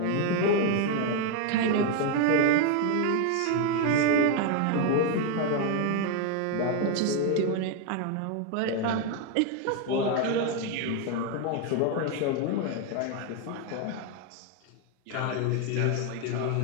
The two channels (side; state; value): both; different; correlation 0.01